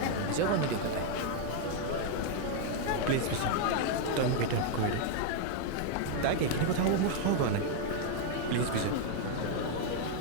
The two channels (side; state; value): both; different; correlation 0.01